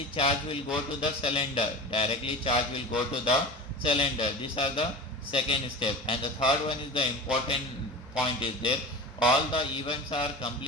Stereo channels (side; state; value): both; normal; correlation 0.32